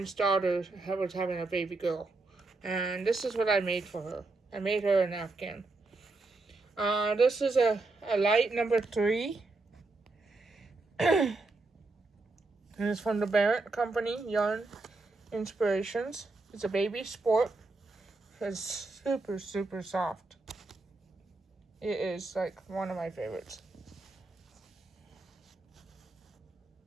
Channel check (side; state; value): left; quieter; 3.4 dB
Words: daughter was having a baby girl. And this is what I made for her. I made her an Afghan. This is a light number 3. And it's from the Barrett Company, Yarn Inspirations. It's a baby sport. It's super, super soft. It is like one of my favorites.